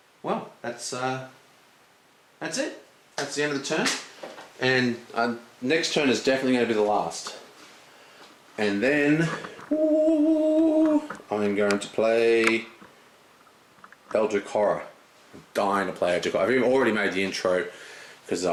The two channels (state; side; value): identical; both; correlation 1.00